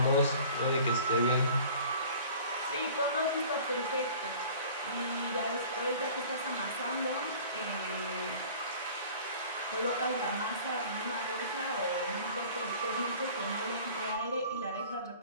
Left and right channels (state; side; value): inverted; both; correlation -0.46